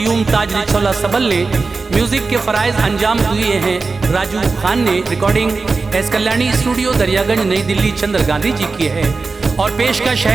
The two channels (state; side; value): quieter; left; 4.2 dB